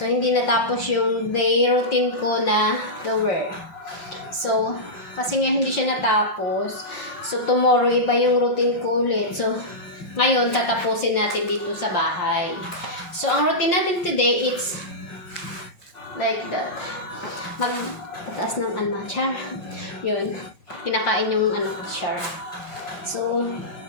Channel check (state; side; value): late; right; 5.7 ms